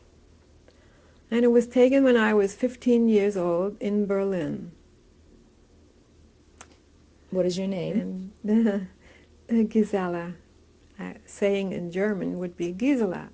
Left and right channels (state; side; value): identical; both; correlation 1.00